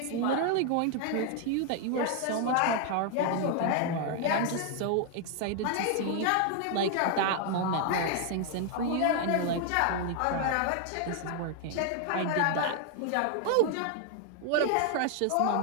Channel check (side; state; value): both; different; correlation 0.00